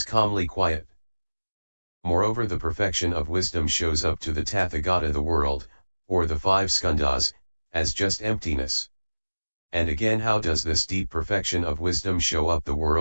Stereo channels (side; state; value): both; inverted; correlation -1.00